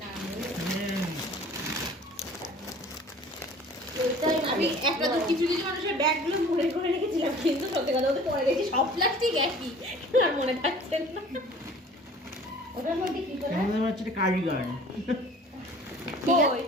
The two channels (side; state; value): both; normal; correlation 0.47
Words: না। আমি একটা তো কিছু কিছু মানুষের ব্যাগগুলো মনে করে রেখেছিলাম, কিন্তু সত্যি কথা বলতে পরে দেখি সব প্লাস্টিক একই, আর মনে থাকছে না। ওটার মধ্যে কি করে? আমাদের হচ্ছে এটা কার্ডিগান। কই?